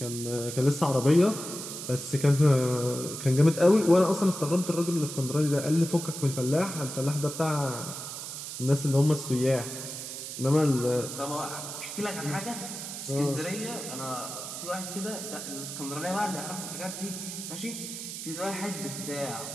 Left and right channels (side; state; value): right; noise; hiss, 8 dB below the sound